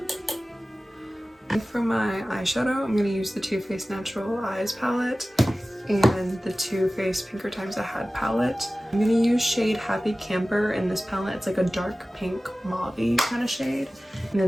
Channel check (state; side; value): normal; both; correlation 0.96